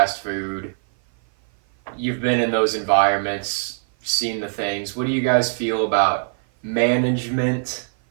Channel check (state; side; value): silent; left; 56 dB below the other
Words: food. You've been in those environments, seen the things. What do you guys feel about management